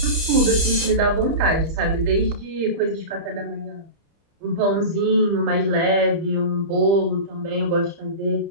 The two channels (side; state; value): left; late; 30 ms